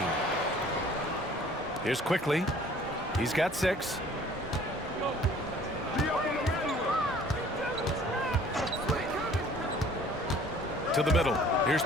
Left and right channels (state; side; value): normal; both; correlation 0.53